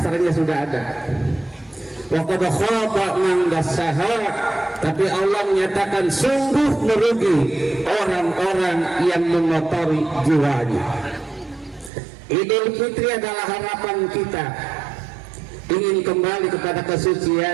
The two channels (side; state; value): left; drops out; at 11.9 s